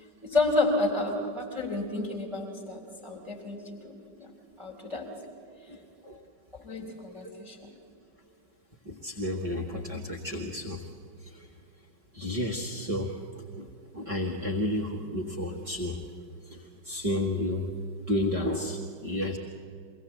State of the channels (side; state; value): left; late; 5.3 ms